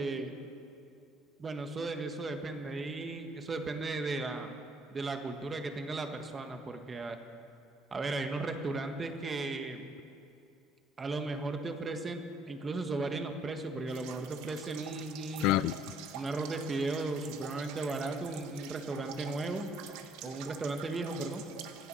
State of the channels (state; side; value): normal; both; correlation 0.63